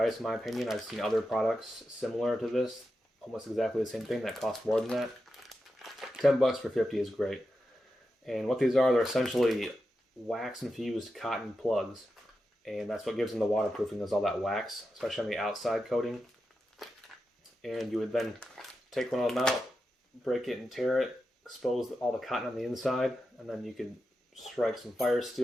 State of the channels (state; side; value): normal; both; correlation 0.89